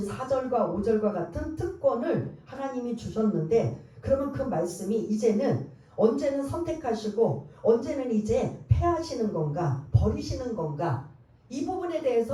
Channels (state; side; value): identical; both; correlation 1.00